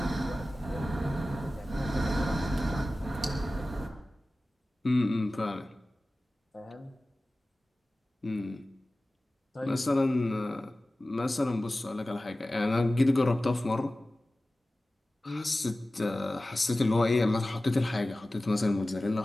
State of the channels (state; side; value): normal; both; correlation 0.96